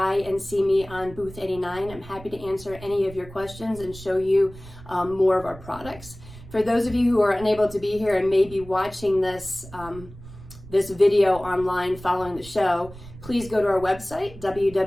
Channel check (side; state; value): right; noise; rumble, 17 dB below the sound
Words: and see me on booth 89. I'm happy to answer any of your questions and show you more of our products. For those of you who are unable to be here and may be watching this this video online following the show, please go to our website,